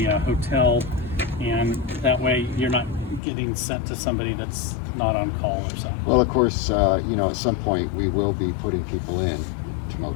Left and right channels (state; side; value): drops out; right; at 3.2 s